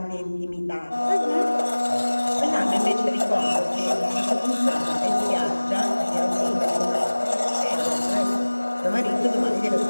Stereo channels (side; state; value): both; inverted; correlation -1.00